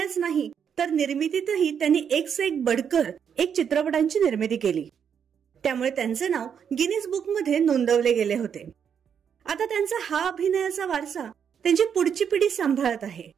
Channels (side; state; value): left; quieter; 7.7 dB